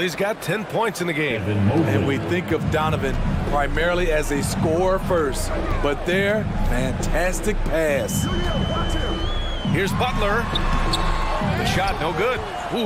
got 10 points in the game. And we think of Donovan primarily as a scorer first, but their fantastic pass. Here's Butler. The shot no good.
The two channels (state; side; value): identical; both; correlation 1.00